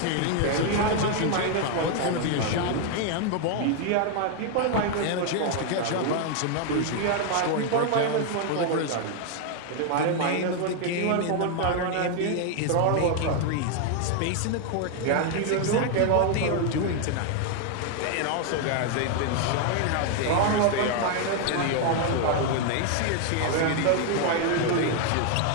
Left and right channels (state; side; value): different; both; correlation 0.00